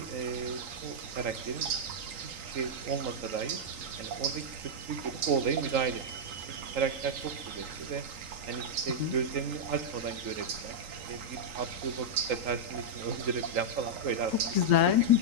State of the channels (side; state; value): left; late; 3.8 ms